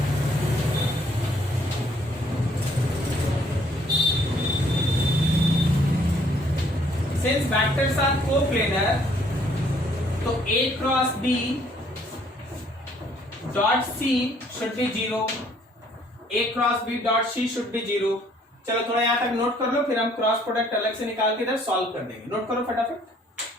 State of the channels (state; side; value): normal; both; correlation 0.63